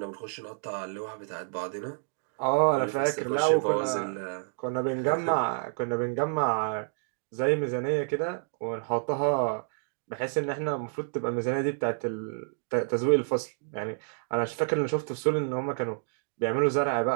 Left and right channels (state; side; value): silent; left; digital silence